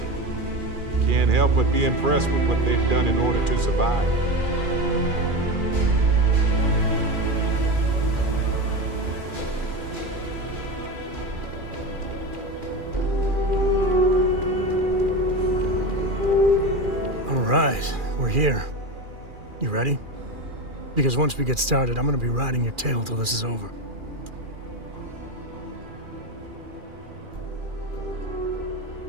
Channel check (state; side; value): late; left; 2.4 ms